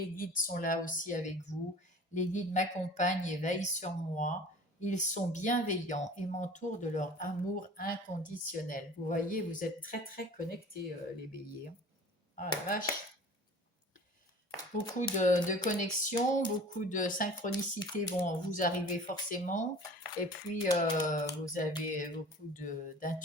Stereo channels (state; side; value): normal; both; correlation 0.43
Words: guides sont là aussi avec vous. Les guides m'accompagnent et veillent sur moi. Ils sont bienveillants et m'entourent de leur amour inconditionnel. Vous voyez, vous êtes très très connectés, les béliers. Ah la vache! Beaucoup de connexions, beaucoup de synchronicités vont vous arriver forcément. Et puis, vous avez beaucoup